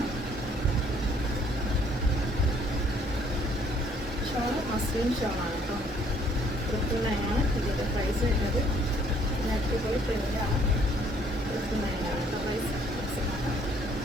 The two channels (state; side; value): normal; both; correlation 0.62